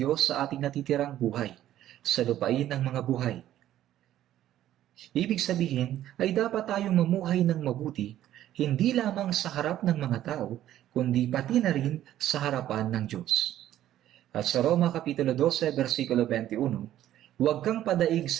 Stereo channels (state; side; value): quieter; left; 12.6 dB